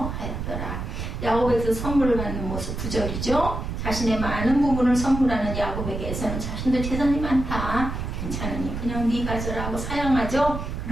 하였더라. 야곱에서 선물을 받는 모습 9절이죠. 자신의 많은 부분을 선물하는 야곱에게서는 자신도 재산이 많다. 괜찮으니 그냥 네 가져라 하고 사양하죠.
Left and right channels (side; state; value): right; noise; rumble, 5 dB below the sound